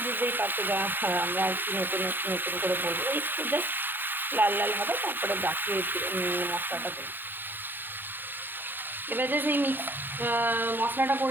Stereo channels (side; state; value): left; late; 0.096 ms